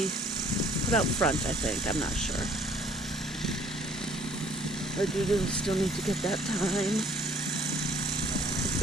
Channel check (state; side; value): normal; both; correlation 0.59